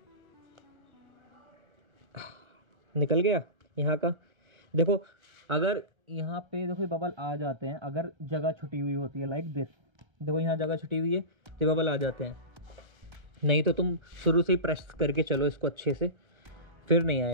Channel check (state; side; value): late; left; 1.3 ms